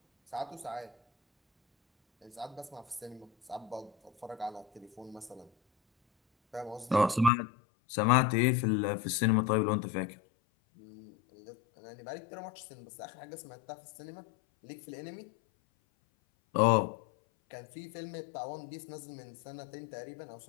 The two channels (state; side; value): drops out; right; at 7.3 s